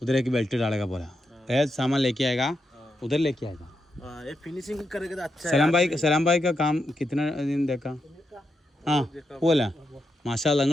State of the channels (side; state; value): both; normal; correlation 0.84